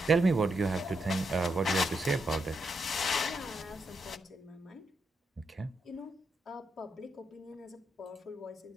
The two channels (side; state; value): both; normal; correlation 0.82